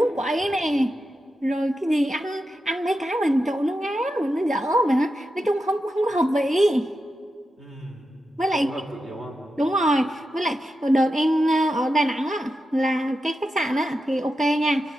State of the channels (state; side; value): normal; both; correlation 0.89